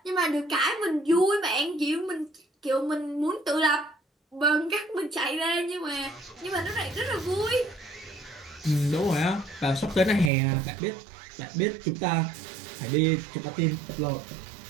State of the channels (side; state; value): left; drops out; at 10.3 s